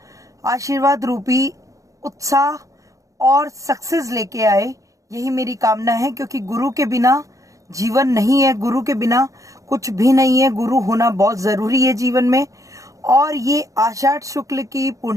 आशीर्वाद रूपी उत्साह और सक्सेस लेके आए। यही मेरी कामना है, क्योंकि गुरु के बिना जीवन नहीं है, गुरु के बिना कुछ भी नहीं है। गुरु होना बहुत जरूरी है जीवन में। और ये आषाढ़ शुक्ल की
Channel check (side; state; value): left; late; 0.16 ms